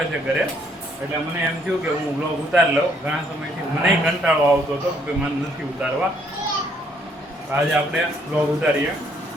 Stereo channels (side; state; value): both; normal; correlation 0.68